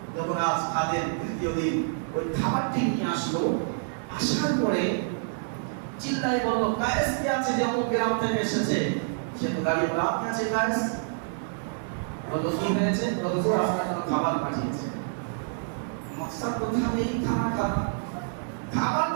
যখন আজ খাদেম তৃতীয় দিন ওই খাবারটি নিয়ে আসলো, আসার পরে চিল্লাই বলল, কায়েস কে আছে যে অমুক গ্রাম থেকে এসেছে? সে তো দাঁড়িয়ে বলল, আপনি আছে কায়েস? বলল কি হয়েছে? হুজুর আপনার জন্য খাবার পাঠিয়েছে। মকসদ তো থাকে এই খাবার খাওয়া, খাবার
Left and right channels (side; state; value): left; silent; digital silence